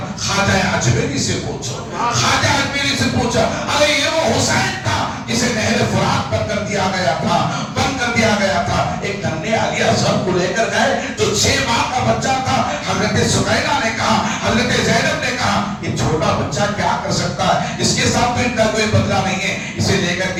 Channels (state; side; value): identical; both; correlation 1.00